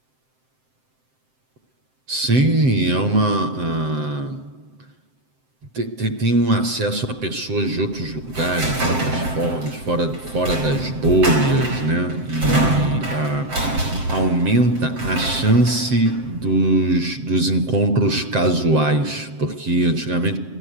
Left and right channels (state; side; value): late; left; 7.7 ms